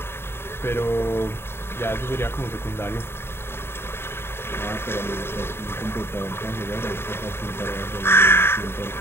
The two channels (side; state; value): right; late; 0.11 ms